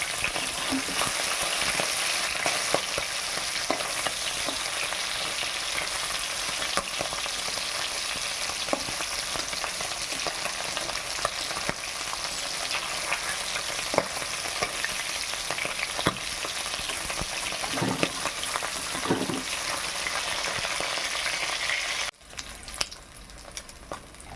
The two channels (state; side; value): identical; both; correlation 1.00